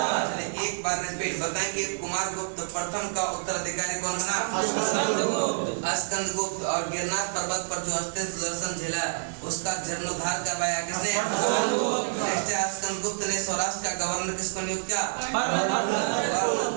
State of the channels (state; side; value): silent; left; 59 dB below the other